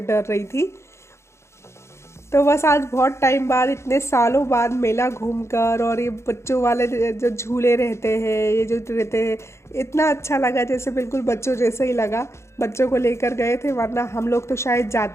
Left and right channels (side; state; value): right; late; 0.13 ms